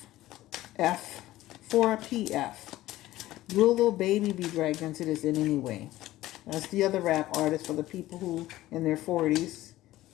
F for PF. Will Lil Baby be dragged into this in any way? That's the other rap artist for the people who in their 40s.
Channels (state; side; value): quieter; right; 15.8 dB